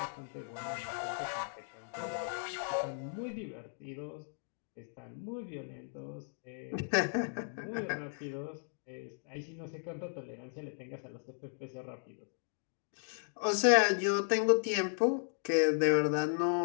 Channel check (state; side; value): silent; right; digital silence